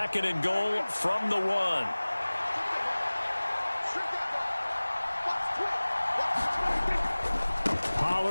and goal from the 1.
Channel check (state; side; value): inverted; both; correlation -1.00